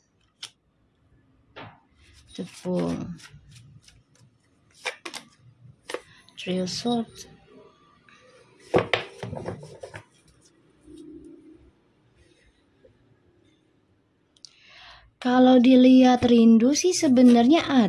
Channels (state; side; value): identical; both; correlation 1.00